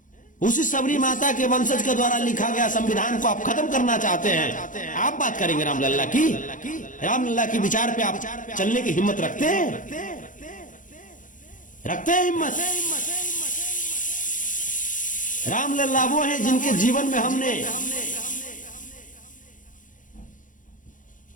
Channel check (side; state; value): right; late; 0.38 ms